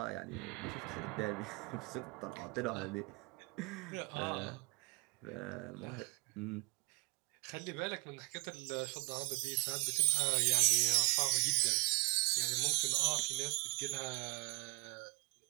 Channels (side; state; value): left; quieter; 31.2 dB